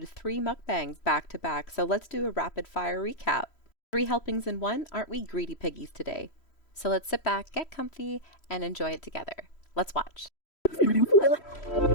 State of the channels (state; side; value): late; right; 3.1 ms